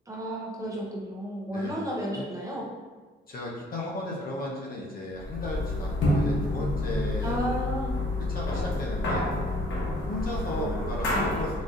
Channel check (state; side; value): normal; both; correlation 0.58